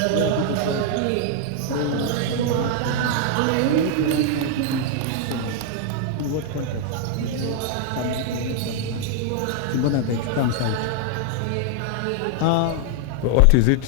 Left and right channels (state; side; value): different; both; correlation 0.00